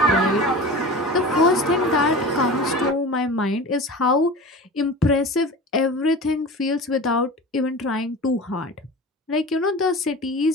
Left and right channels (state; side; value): normal; both; correlation 0.34